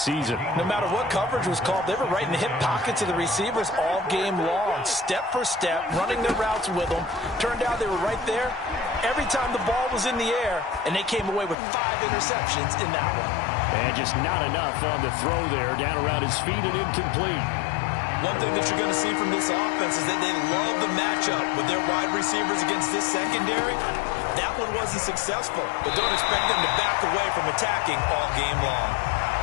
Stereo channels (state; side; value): drops out; right; at 11.6 s